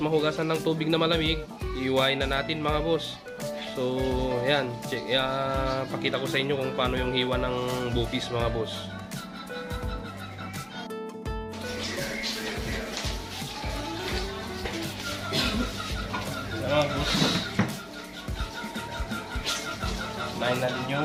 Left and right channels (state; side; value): identical; both; correlation 1.00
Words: ng tubig na malamig, iwain na natin mga boss. So ayan, pakita ko sa inyo kung paano yung hiwa ng bopis mga boss. Mga boss, nahin natin